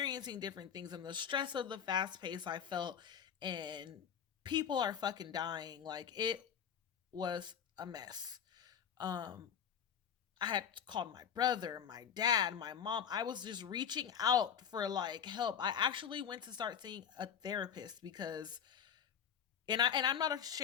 different things, and the stress of the fast pace I felt, and people are fucking dying. Like, it was a mess. um I had called my brother, my dad, my mom. I was just reaching out for like help. I actually went to start seeing a therapist because, and I'm not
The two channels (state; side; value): quieter; right; 8.1 dB